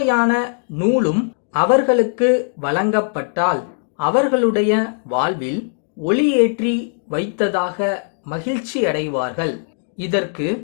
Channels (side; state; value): right; silent; digital silence